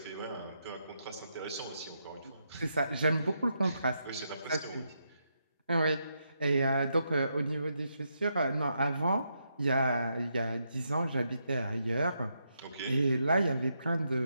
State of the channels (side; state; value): both; inverted; correlation -0.81